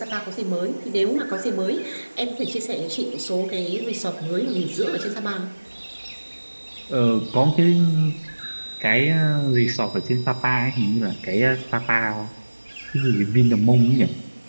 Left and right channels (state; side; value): inverted; both; correlation -1.00